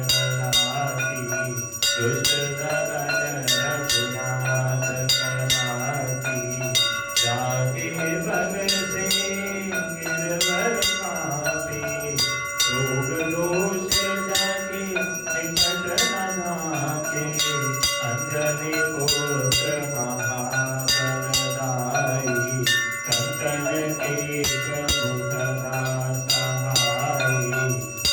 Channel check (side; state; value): both; identical; correlation 1.00